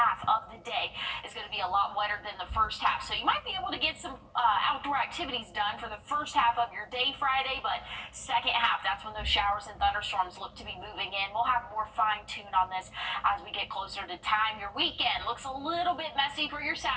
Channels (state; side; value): identical; both; correlation 1.00